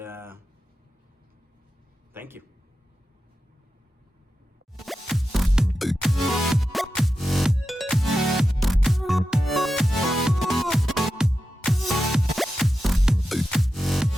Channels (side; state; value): both; normal; correlation 0.91